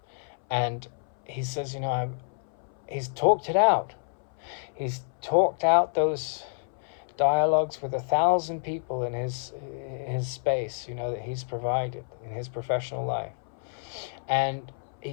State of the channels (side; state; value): right; silent; 59 dB below the other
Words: And he says, he's talked it out. He's talked out those dialogues with 1,000 people in his space, that he's provided in his professional life. And he